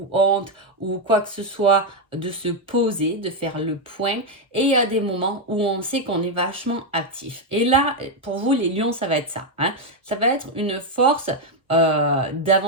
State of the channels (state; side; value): normal; both; correlation 0.03